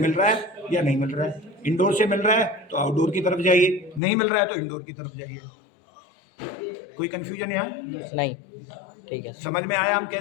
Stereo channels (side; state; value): right; drops out; at 4.0 s